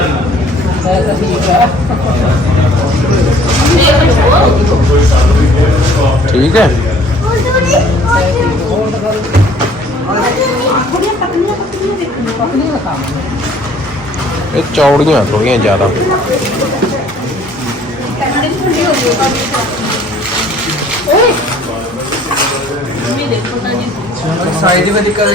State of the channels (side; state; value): both; normal; correlation 0.56